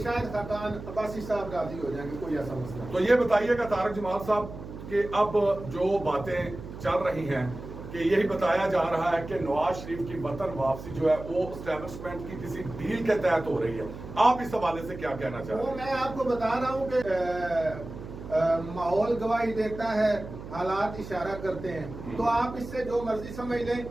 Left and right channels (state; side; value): noise; right; hum, 12 dB below the sound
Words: شاید خاقان عباسی صاحب راضی ہو جائیں گے، کوئی ایسا مسئلہ. تو یہ بتائیے گا طارق جمال صاحب کہ اب جو باتیں چل رہی ہیں کہ یہی بتایا جا رہا ہے کہ نواز شریف کی وطن واپسی جو ہے وہ اسٹیبلشمنٹ کی کسی ڈیل کے تحت ہو رہی ہے، آپ اس حوالے سے کیا کہنا چاہتے ہیں؟ میں آپ کو بتا رہا ہوں کہ ماحول گواہی دیتا ہے، حالات اشارہ کرتے ہیں. تو آپ اس سے جو مرضی سمجھ لیں،